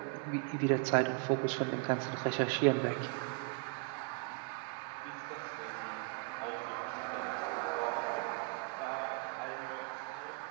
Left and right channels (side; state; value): left; quieter; 31.6 dB